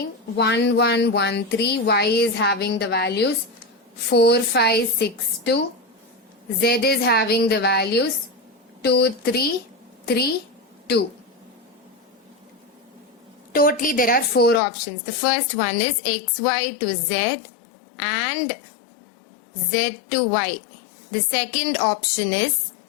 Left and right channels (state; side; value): drops out; right; at 14.6 s